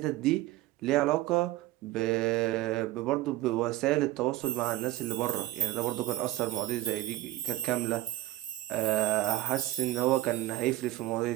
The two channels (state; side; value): quieter; left; 16.4 dB